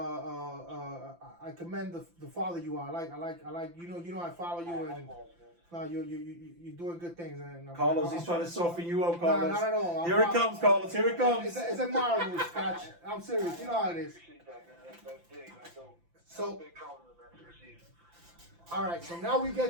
I commend the father you are. I like. You know I follow you and. No, you're doing good things. And Carlos, he's trying to soften you up, No, Carlos. not at all. Here it comes, Carlos. Here it comes. It's admirable, Scotch. I'm serious. You know how it is. Appreciate that, man. That's big. That's dope. So, Big compliment, man, to receive. all right. So now we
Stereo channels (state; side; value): late; left; 5.8 ms